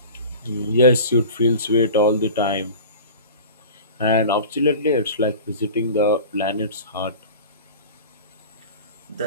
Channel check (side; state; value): both; inverted; correlation -0.36